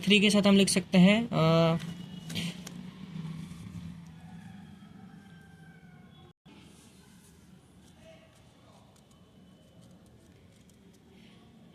के साथ हम लिख सकते हैं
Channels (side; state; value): both; identical; correlation 1.00